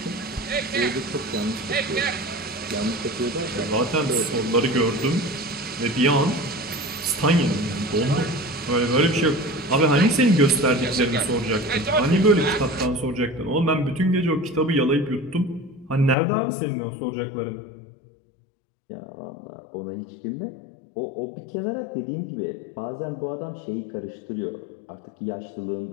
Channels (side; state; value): right; drops out; at 16.2 s